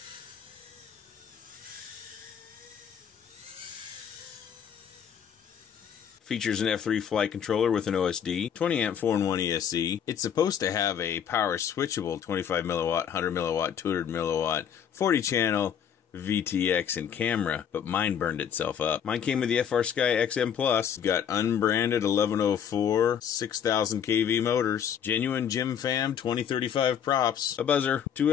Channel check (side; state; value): right; quieter; 8.4 dB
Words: Features an F3 flight controller with an OSD, 20 amp 4-in-1 ESC. It's supposed to have a power switchable 25 milliwatt, 100 milliwatt, 200 milliwatt, 40 channel, VTX and camera, but mine burned itself up. Mine came with the FrSky XM Plus. Got unbranded 1104 6000 kV motors, genuine Jim Fam 2035 props, a buzzer,